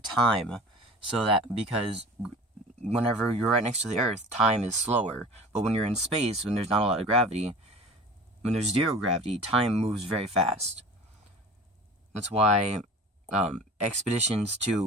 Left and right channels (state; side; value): normal; both; correlation 0.40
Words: because whenever you're right next to the Earth, time is slower. But when you're in space, when there's not a lot of gravity, when there's zero gravity, time moves very fast. That's why expeditions